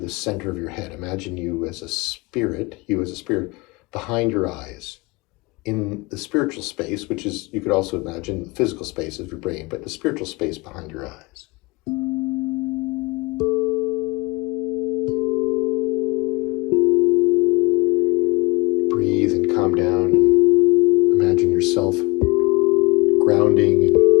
center of your head. Imagine you as a spirit, behind your eyes. In the spiritual space, which is, you could also imagine the physical space of your brain, but the spiritual space behind your eyes. Breathe and calm down and imagine yourself grounding and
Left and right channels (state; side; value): quieter; right; 25.9 dB